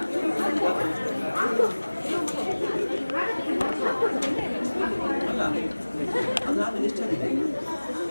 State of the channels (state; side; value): inverted; both; correlation -1.00